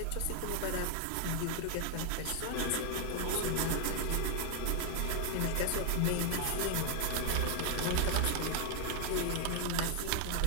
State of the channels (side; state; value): both; different; correlation 0.00